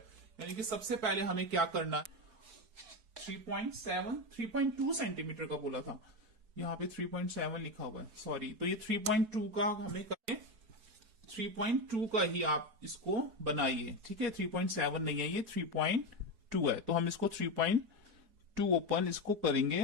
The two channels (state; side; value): late; left; 4.7 ms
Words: यानी कि सबसे पहले हमें क्या करना है, 3.2 सेंटीमीटर का बोला था, यहाँ पे 3.7 लिखा हुआ है, सॉरी। तो ये 3.2 का हमें करें, 3.2 का ही आप इसको बनाइए, ठीक है। 3.7 नहीं है, ये 3.2 है। तो हम इसको 3.2 ओपन इसको करेंगे